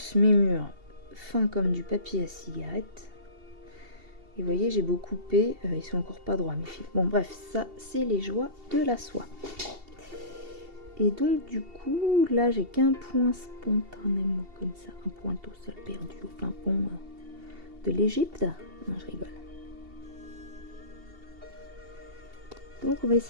mes murs fins comme du papier à cigarette. Et vous voyez, j'ai beau couper, ils sont encore pas droits mes fils. Bon bref, ça c'est les joies de la soie. Et donc du coup, là j'ai qu'un point spontanément comme ça, un point tout seul perdu au fin fond de l'Égypte. Non, je rigole. Donc on va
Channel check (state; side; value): late; left; 2.7 ms